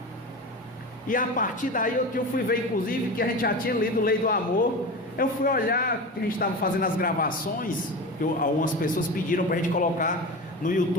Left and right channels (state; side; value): normal; both; correlation 0.27